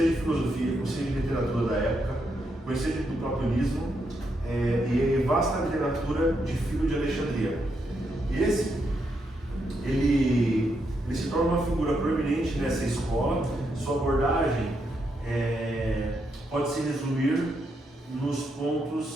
de filosofia, conhecia de literatura da época, conhecia do platonismo, e vasta literatura de Filho de Alexandria. E ele se torna uma figura proeminente nessa escola. Sua abordagem pode se resumir nos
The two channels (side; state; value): both; normal; correlation 0.80